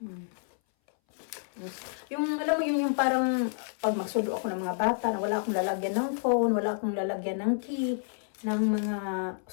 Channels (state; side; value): silent; right; 58 dB below the other